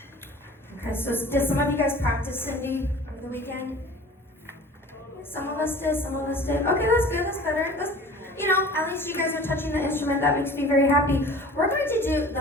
Okay, so did some of you guys practice Cindy over the weekend? Some of us did, some of us did. Okay, that's good, that's better. At least you guys are touching the instrument. That makes me very happy. We're going to do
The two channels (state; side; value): normal; both; correlation 0.43